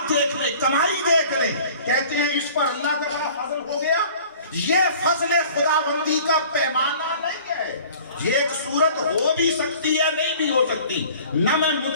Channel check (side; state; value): both; inverted; correlation -0.48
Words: دیکھ لیں، کمائی دیکھ لیں، کہتے ہیں اس پر اللہ کا بڑا فضل ہو گیا. یہ فضل خداوندی کا پیمانہ نہیں ہے. یہ ایک صورت ہو بھی سکتی ہے، نہیں بھی ہو سکتی. نہ میں